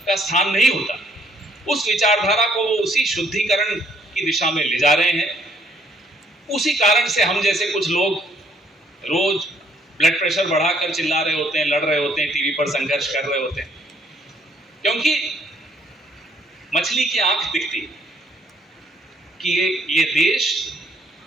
का स्थान नहीं होता। उस विचारधारा को वो उसी शुद्धिकरण की दिशा में ले जा रहे हैं। उसी कारण से हम जैसे कुछ लोग रोज ब्लड प्रेशर बढ़ाकर चिल्ला रहे होते हैं, लड़ रहे होते हैं, टीवी पर संघर्ष कर रहे होते हैं, क्योंकि मछली की आंख दिखती है कि ये देश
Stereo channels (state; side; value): normal; both; correlation 0.64